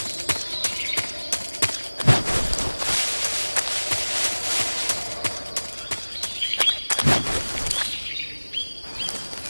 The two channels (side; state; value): both; inverted; correlation -1.00